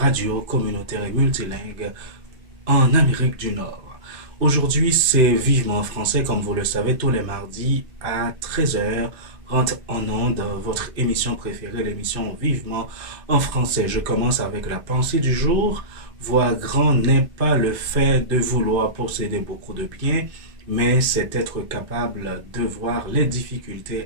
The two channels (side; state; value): left; late; 2.5 ms